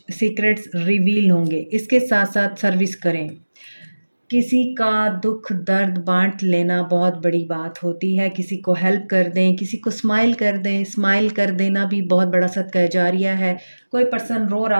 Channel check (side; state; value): both; inverted; correlation -1.00